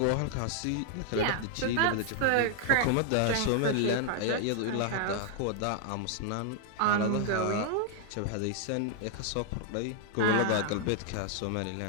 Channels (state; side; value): different; both; correlation 0.00